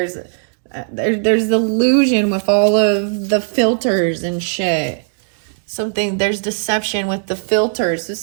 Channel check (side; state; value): left; silent; digital silence